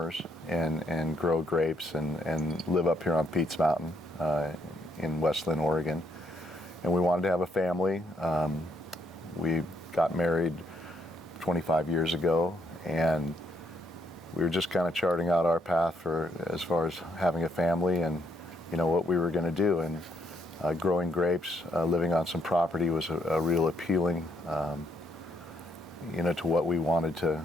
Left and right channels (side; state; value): both; normal; correlation 0.73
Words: and grow grapes and live up here on Pete's Mountain in West Linn, Oregon. And we wanted to have a family. We got married 25 years ago, and we were just kind of charting out our path for as far as having a family and what we were going to do. And growing grapes, living on some property was a real appealing to what we wanted